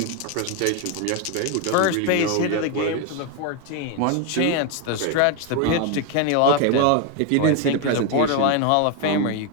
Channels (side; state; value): both; different; correlation 0.01